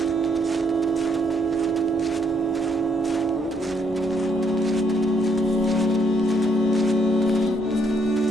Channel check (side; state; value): both; normal; correlation 0.71